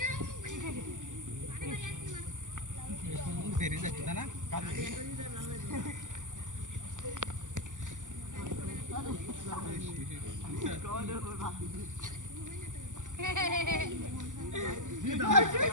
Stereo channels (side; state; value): left; late; 0.87 ms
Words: বেরিয়ে যাচ্ছে না